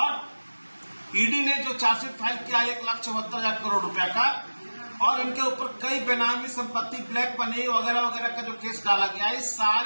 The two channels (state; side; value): inverted; both; correlation -1.00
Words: ईडी ने जो चार्जशीट फाइल किया 1,74,000 करोड़ रुपया का, और इनके ऊपर कई बेनामी संपत्ति, ब्लैक मनी वगैरह वगैरह का जो केस डाला गया, इस